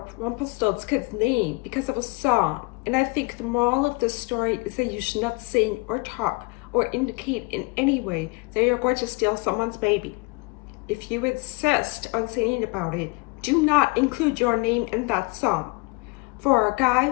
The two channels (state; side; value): quieter; right; 26.7 dB